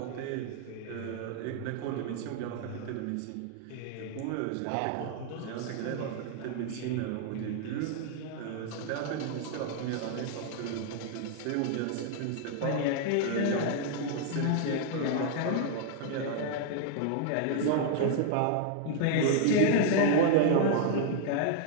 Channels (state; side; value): different; both; correlation 0.00